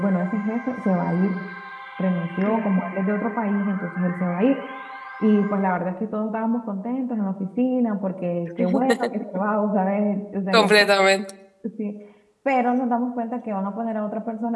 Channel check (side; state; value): both; identical; correlation 1.00